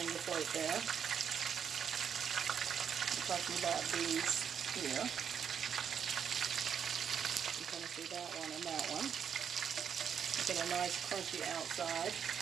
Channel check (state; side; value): quieter; left; 7.7 dB